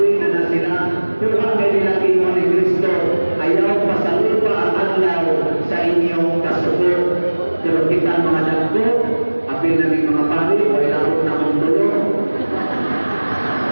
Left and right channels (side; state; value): both; inverted; correlation -1.00